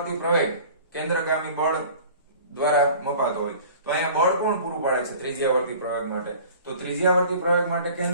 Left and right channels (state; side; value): inverted; both; correlation -0.45